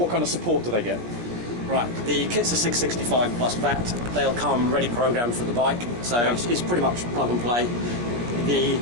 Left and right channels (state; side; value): late; left; 17 ms